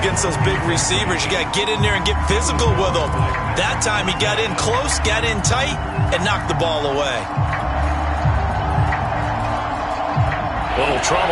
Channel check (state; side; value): identical; both; correlation 1.00